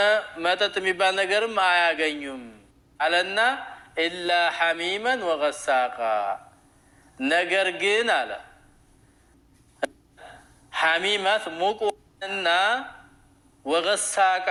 መጠጥ የሚባል ነገርም አያገኙም አለና ኢላ ሐሚመን ወገሳቃ፣ ነገር ግን አለ ሐሚማት ሙቁና ወገሳቃ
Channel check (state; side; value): identical; both; correlation 1.00